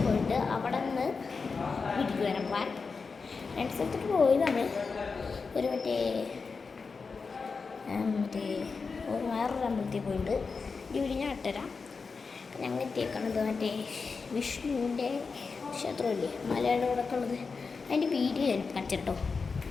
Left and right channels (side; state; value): right; quieter; 4.8 dB